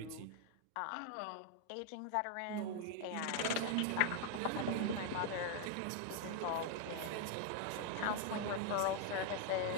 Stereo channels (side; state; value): both; different; correlation 0.00